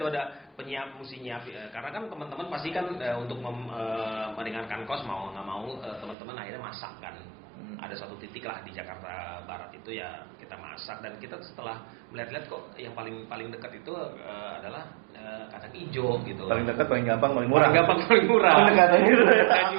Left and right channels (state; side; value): drops out; left; at 6.2 s